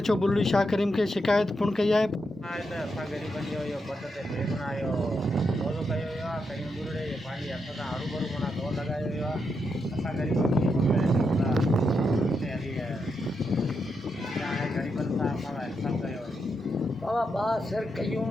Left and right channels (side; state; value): both; normal; correlation 0.83